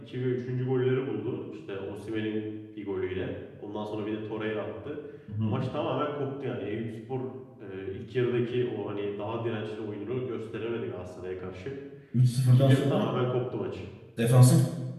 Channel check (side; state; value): both; identical; correlation 1.00